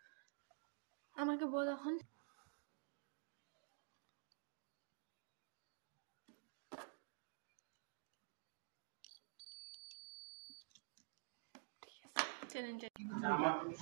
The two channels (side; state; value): left; silent; digital silence